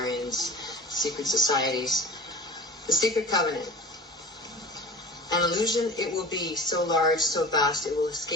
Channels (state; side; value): normal; both; correlation 0.37